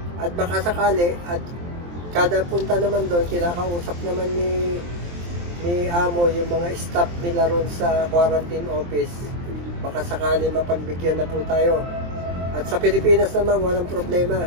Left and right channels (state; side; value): late; left; 23 ms